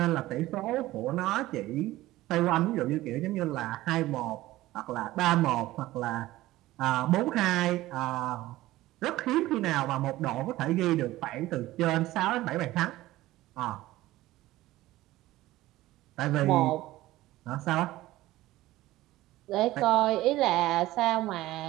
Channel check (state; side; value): quieter; left; 16.8 dB